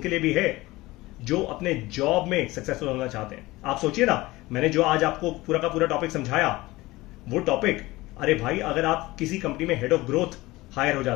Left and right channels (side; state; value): right; quieter; 19.7 dB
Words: लिए भी है जो अपने जॉब में सक्सेसफुल होना चाहते हैं। आप सोचिए ना, मैंने जो आज आपको पूरा का पूरा टॉपिक समझाया, वो टॉपिक, अरे भाई, अगर आप किसी कंपनी में हेड ऑफ ग्रोथ हायर हो